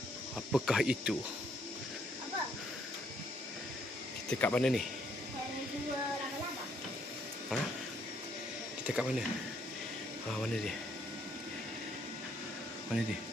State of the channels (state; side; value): normal; both; correlation 0.69